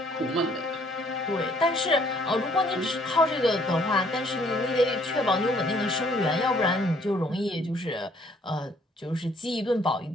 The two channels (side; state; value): both; normal; correlation 0.62